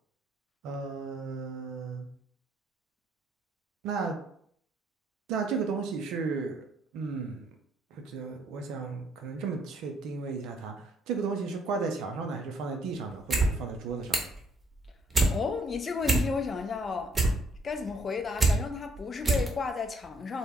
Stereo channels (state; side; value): normal; both; correlation 0.68